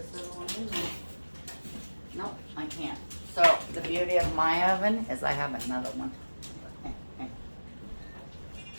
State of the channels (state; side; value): inverted; both; correlation -1.00